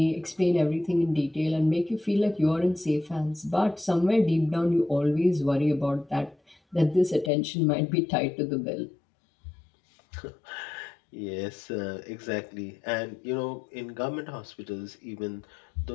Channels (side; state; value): right; drops out; at 7.3 s